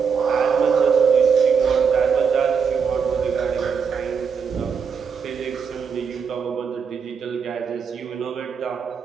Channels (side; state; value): left; quieter; 6.2 dB